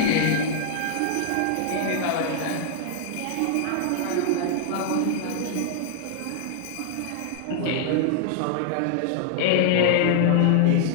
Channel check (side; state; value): both; different; correlation 0.00